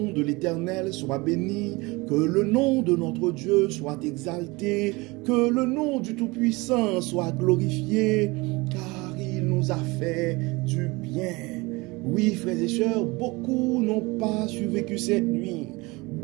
de l'Éternel soit béni, que le nom de notre Dieu soit exalté, que le nom du Tout-Puissant soit glorifié, car il nous a fait du bien. Oui, frères et sœurs, beaucoup n'ont pas survécu cette nuit.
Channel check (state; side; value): quieter; left; 24.1 dB